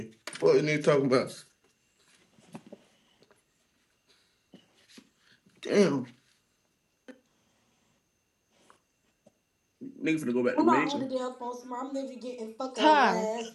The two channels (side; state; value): both; identical; correlation 1.00